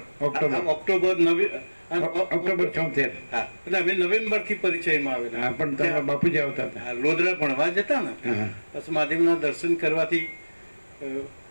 76. હા, એટલે અમે નવેમ્બરથી પરિચયમાં આવેલા. હા, પણ તમારા બાપુજી આવતા હતા. લોધરા ભણવા જતા ને, બસ મહાદેવના દર્શન કરવાથી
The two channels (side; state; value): both; inverted; correlation -1.00